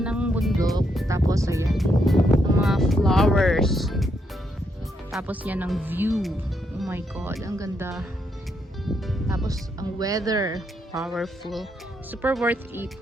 ng bundok. Tapos ayan, ang mga flowers. Tapos yan ang view. Oh my god, ang ganda. Tapos ang weather, powerful. Super worth it.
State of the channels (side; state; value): both; normal; correlation 0.78